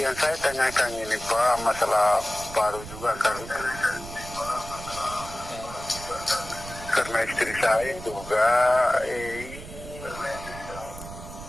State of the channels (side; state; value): right; noise; rumble, 13 dB below the sound